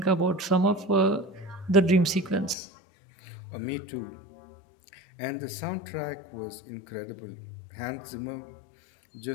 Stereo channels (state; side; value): drops out; right; at 2.6 s